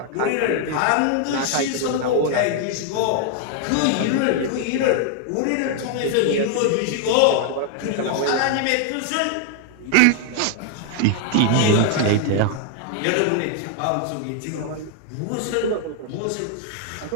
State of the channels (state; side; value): different; both; correlation 0.00